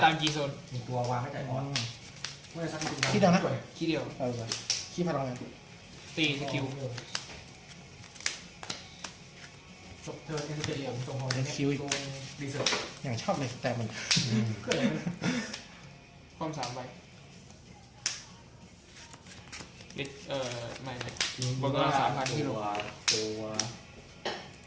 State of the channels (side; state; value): both; identical; correlation 1.00